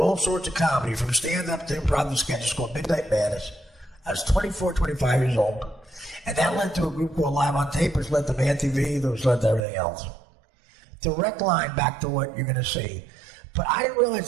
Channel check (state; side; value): drops out; left; at 9.7 s